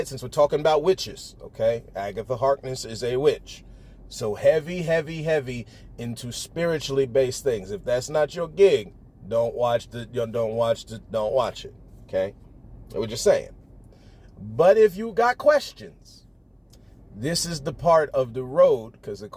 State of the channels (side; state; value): both; identical; correlation 1.00